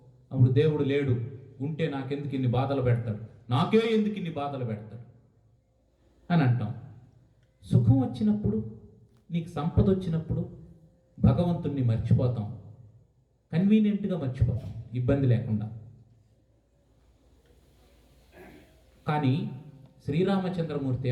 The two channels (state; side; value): identical; both; correlation 1.00